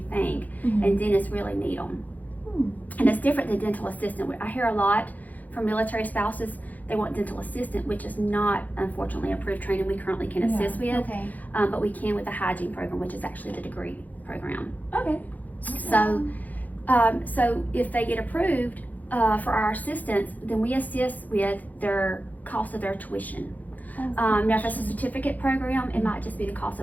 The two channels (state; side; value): late; right; 0.080 ms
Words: think, and dentists really need them. And it's different than dental assistant. I hear a lot from military spouses, they want dental assistant, which is not, unfortunately, approved training we currently can assist with. But we can with the hygiene program, which is actually the degree program. So if they get approved for our assistance, then we assist with their cost of their tuition. Now if it's a certificate program, it might just be the cost